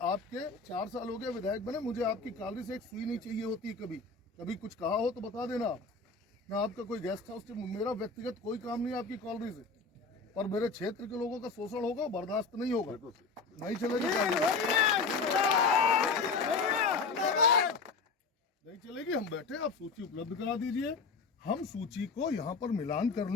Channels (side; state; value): right; quieter; 4.2 dB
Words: आपके 4 साल हो गए विधायक बने, मुझे आपकी कॉलोनी से एक सुई नहीं चाहिए होती। कभी कुछ कहा हो तो बता देना आप। मैं आपका कोई गेस्ट हाउस, मेरा व्यक्तिगत कोई काम नहीं है आपकी कॉलोनी से, पर मेरे क्षेत्र के लोगों का शोषण होगा, बर्दाश्त नहीं होगा, नहीं चलेगी, नहीं चलेगी। हम बैठे, आप सूची उपलब्ध करा दीजिए, हम सूची को यहाँ पर मिलान कर